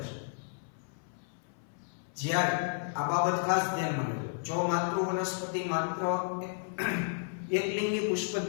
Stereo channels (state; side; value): silent; right; 56 dB below the other